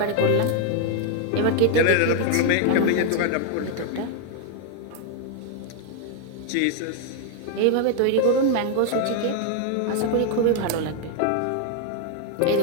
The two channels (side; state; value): both; different; correlation 0.00